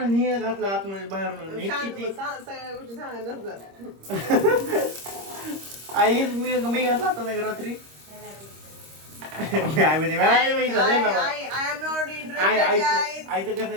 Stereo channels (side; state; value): left; late; 26 ms